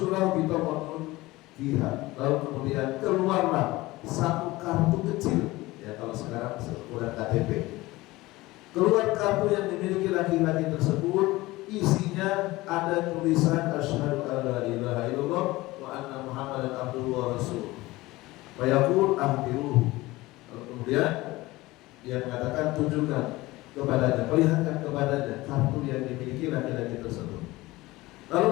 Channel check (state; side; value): quieter; right; 19.5 dB